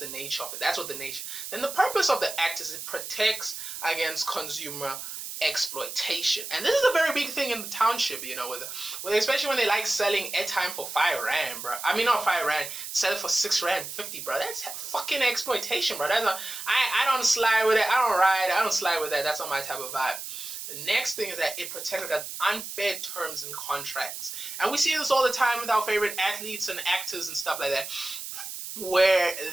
nature of it. That's what the nature. Then the purpose of the act is it protects against consumer exploitation. And this is a very big thing in the township, especially when they like selling airtime for 5 rand, bro. Not 5 rand, sell it for 6 rand 50, bro. That's fucking exploitation, bro. I don't slide with it. I don't slide with that. That's not my type of vibe. The next thing is that it protects against unfair terms and contracts. And we see this all the time with our favorite athletes and actors and stuff like that, where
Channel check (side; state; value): right; noise; hiss, 8 dB below the sound